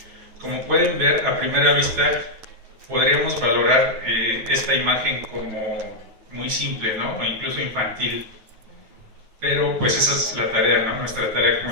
Como pueden ver, a primera vista podríamos valorar esta imagen como muy simple, ¿no? O incluso infantil. Pero pues esa es la tarea, ¿no? Nuestra tarea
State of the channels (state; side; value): late; left; 9.0 ms